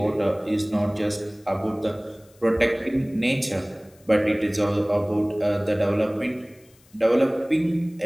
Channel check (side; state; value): left; noise; hiss, 30 dB below the sound